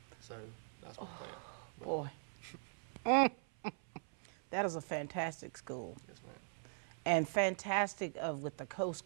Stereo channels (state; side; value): silent; left; 51 dB below the other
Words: So that's my plan. Boy. That is a fantastic school. Yes, ma'am. And fantastic with the Coast